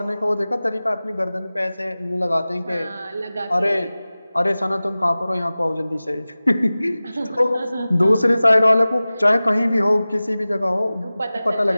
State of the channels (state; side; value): inverted; both; correlation -0.97